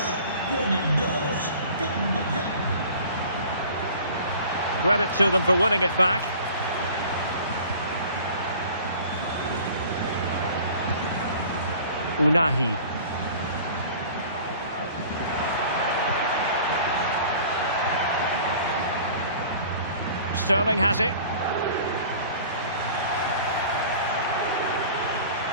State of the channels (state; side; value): inverted; both; correlation -0.45